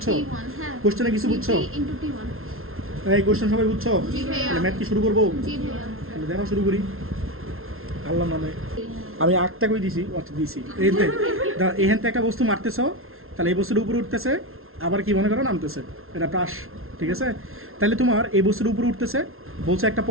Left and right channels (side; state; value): left; late; 0.62 ms